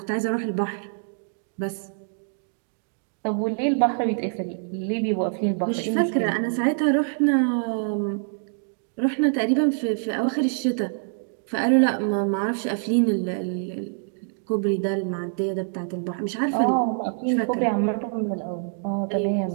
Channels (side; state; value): left; silent; digital silence